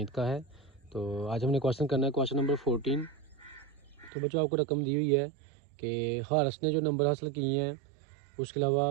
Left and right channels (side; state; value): left; drops out; at 4.1 s